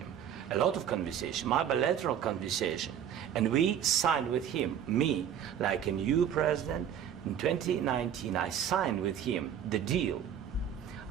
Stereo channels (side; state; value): left; quieter; 9.3 dB